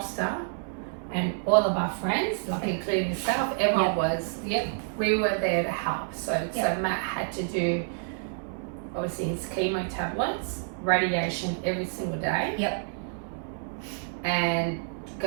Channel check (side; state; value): left; silent; digital silence